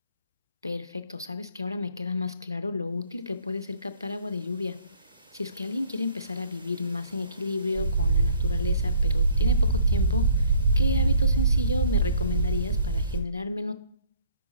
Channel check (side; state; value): both; inverted; correlation -0.57